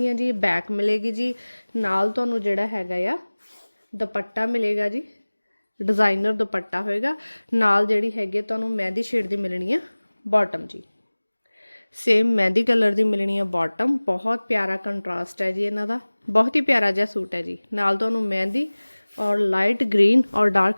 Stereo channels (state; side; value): inverted; both; correlation -1.00